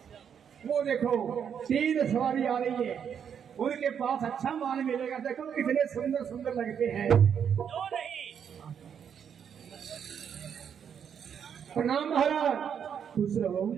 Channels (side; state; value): left; quieter; 7.9 dB